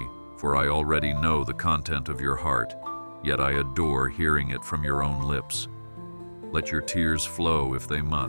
for I already know the content of your heart, yet I adore hearing it from your own lips. Let your tears flow if they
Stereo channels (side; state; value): both; inverted; correlation -1.00